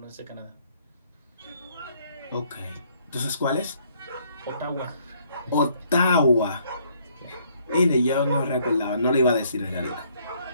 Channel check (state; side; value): inverted; both; correlation -0.66